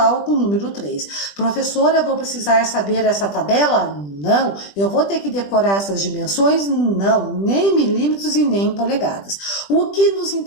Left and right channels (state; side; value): late; right; 20 ms